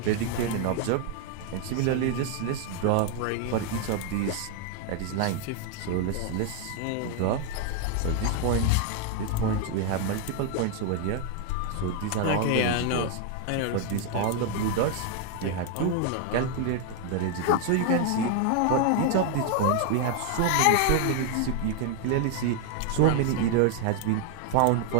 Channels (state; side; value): different; both; correlation 0.00